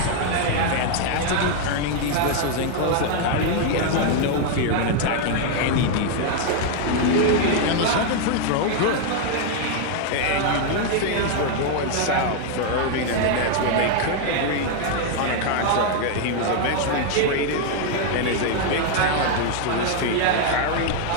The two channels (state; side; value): different; both; correlation 0.00